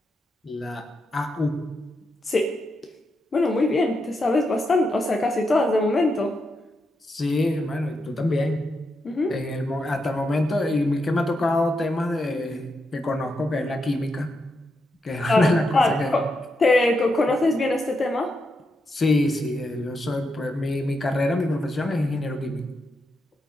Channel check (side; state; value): both; normal; correlation 0.84